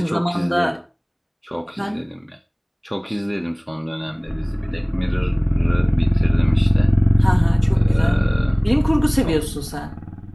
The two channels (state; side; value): identical; both; correlation 1.00